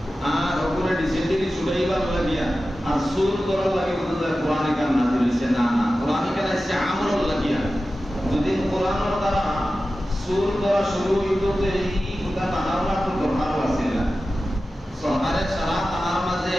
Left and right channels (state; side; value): normal; both; correlation 0.94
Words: আর ওপরে ডিসেন্টারি ছুড়াইবার লাগিয়া আর সুর করার লাগে বুঝতে কোরআন কান নাযিল হইছে না, না কোরআন কান হইছে আমল লাগিয়া। যদি কোরআনের দ্বারা সুর করা শুরু হইতো তো এই কথা তানারা তো দরকার আছে না। সহারে সারা তানার মাঝে